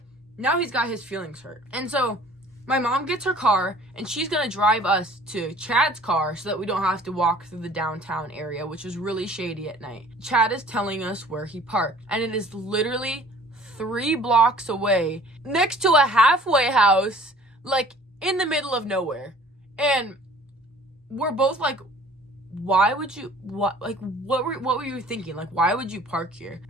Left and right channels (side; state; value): both; normal; correlation 0.51